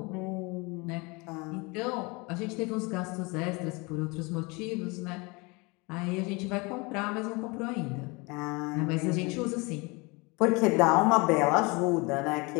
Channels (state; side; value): quieter; right; 27.1 dB